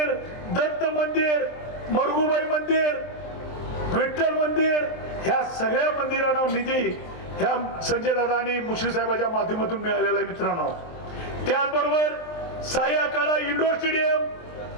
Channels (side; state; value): right; late; 23 ms